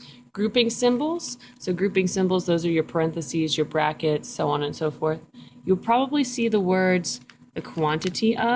Grouping symbols. So grouping symbols, those are your parentheses, your brackets, so on and so forth. You'll probably see the words the quantity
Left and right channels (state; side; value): identical; both; correlation 1.00